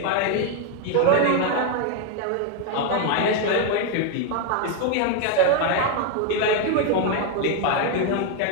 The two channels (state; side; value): different; both; correlation 0.01